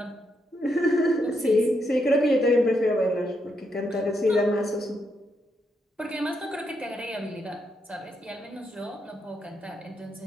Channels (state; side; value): normal; both; correlation 0.80